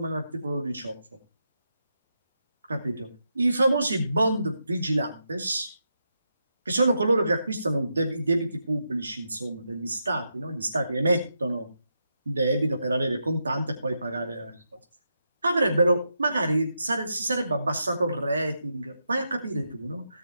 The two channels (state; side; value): inverted; both; correlation -0.84